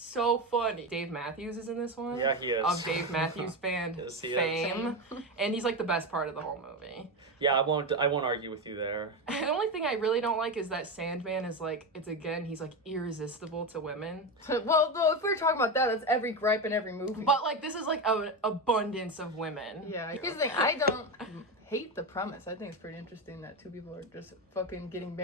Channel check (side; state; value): both; normal; correlation 0.16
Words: funny. Dave Matthews is in this one. Yeah, he is. Of Dave Matthews Band Yes, he is. fame, and he's like the best part of the whole movie. Yeah, I won't argue with you there. The only thing I really don't like is that Sandman is like, he's like irresistible to women. Well, though, if we're talking about that, that's every gripe in every movie. But like, this is like an abundance of women. yeah, here's the thing. I don't hate the premise. I think it's pretty interesting that two people are just fucking getting